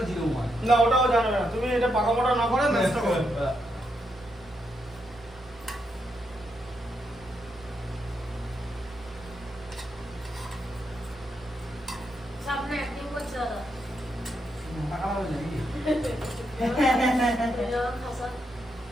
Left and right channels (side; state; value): both; normal; correlation 0.81